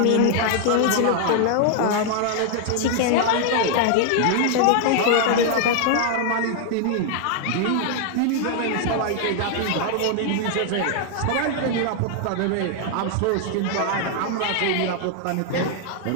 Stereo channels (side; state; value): both; different; correlation 0.00